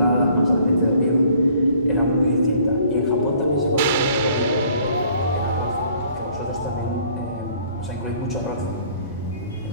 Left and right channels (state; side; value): inverted; both; correlation -0.58